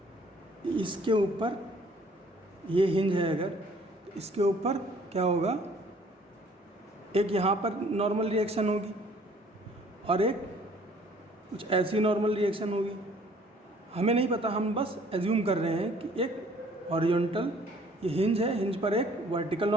इसके ऊपर ये हिंज है, अगर तो इसके ऊपर क्या होगा, एक यहाँ पर नॉर्मल रिएक्शन होगी और एक कुछ ऐसी नॉर्मल रिएक्शन होगी। हमें नहीं पता, हम बस एज्यूम कर रहे हैं कि एक हॉरिजॉन्टल, ये हिंज है, हिंज पर एक वर्टिकल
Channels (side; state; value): both; normal; correlation 0.57